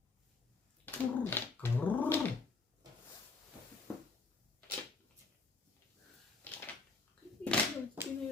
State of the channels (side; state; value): right; quieter; 4.0 dB